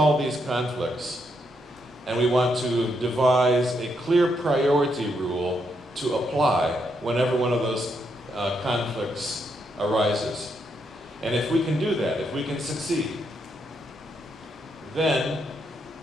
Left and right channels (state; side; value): normal; both; correlation 0.79